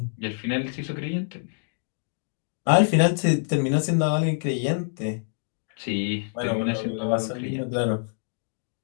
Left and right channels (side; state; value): right; silent; digital silence